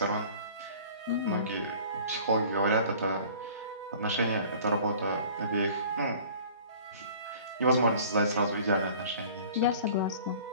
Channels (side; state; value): both; inverted; correlation -0.47